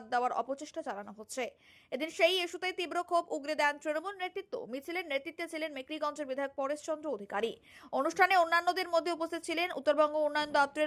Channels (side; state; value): both; identical; correlation 1.00